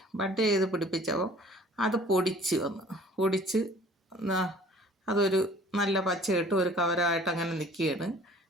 അത് പൊടിച്ച് അതൊരു നല്ല പച്ചയിട്ട് ഒരു കവരമായിട്ട് അങ്ങനെ നിൽക്കുകയാണ്.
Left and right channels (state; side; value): normal; both; correlation 0.52